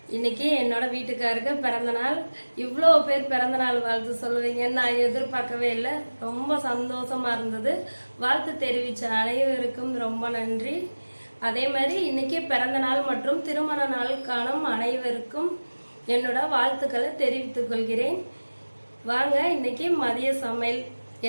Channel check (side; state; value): both; inverted; correlation -1.00